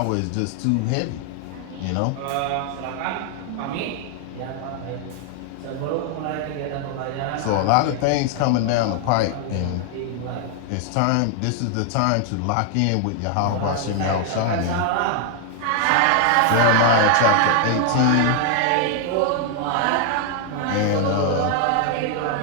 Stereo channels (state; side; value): different; both; correlation 0.00